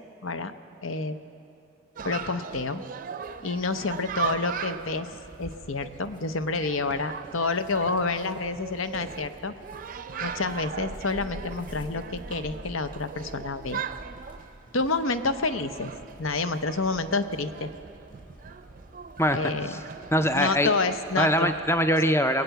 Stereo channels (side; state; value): both; normal; correlation 0.09